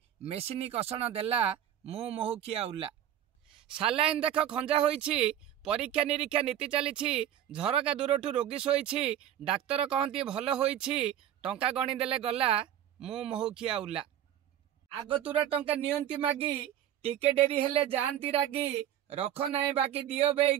मेसिनी कषण देला मु महुखिया उला सालाइन देख खंजा होइछि परीक्षा निरीक्षा नीति चलीछि झरका दूरठू रोगी शोइछि डाक्तर कहंती भल होइछि टंका गणी देले गला मु महुखिया उला आगतुरा टंका नियंती मागी टिके डेरी हेले जानती रागी रख नाई बाकी दियो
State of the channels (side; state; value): left; quieter; 11.0 dB